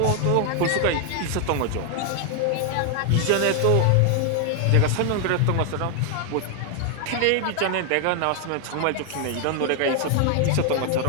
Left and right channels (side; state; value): both; different; correlation 0.00